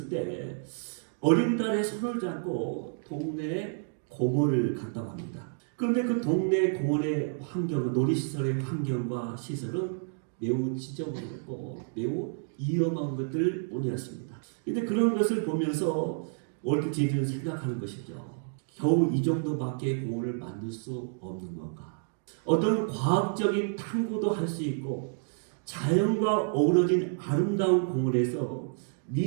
때 어린 딸의 손을 잡고 동네에 공원을 갔다고 합니다. 그런데 그 동네 공원의 환경은, 놀이시설의 환경과 시설은 매우 지저분했고 매우 위험한 것들 뿐이었습니다. 근데 그런 것을 보면서 월트 디즈니는 생각하는 것이죠. 겨우 이 정도밖에 공원을 만들 수 없는 건가? 어떤 과학적인 탐구도 할 수 있고 자연과 어우러진 아름다운 공원에서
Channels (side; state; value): left; silent; digital silence